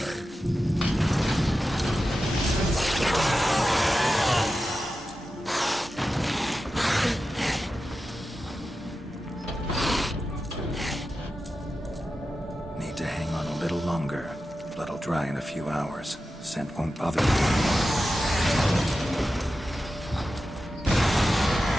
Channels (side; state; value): both; normal; correlation 0.92